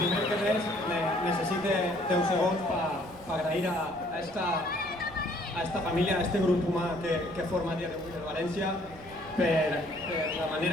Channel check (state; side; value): noise; right; rumble, 22 dB below the sound